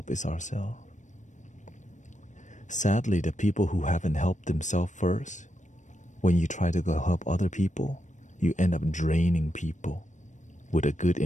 is ourselves. Sadly, the people who haven't helped themselves first, when you try to go help other people, you end up draining people with a good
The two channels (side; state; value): right; late; 0.35 ms